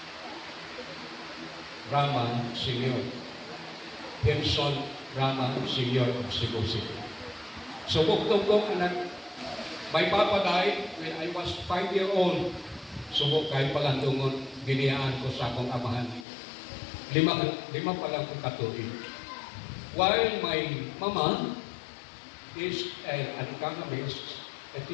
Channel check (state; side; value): drops out; right; at 16.2 s